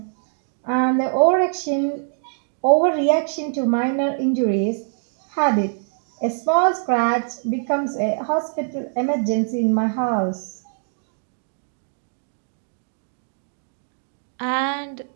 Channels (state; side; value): silent; left; digital silence